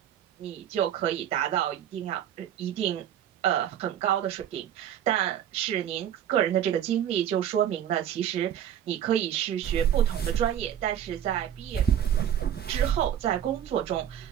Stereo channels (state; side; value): quieter; left; 10.3 dB